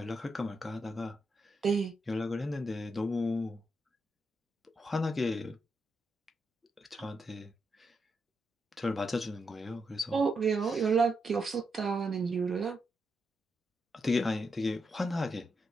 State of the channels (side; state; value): both; normal; correlation 0.83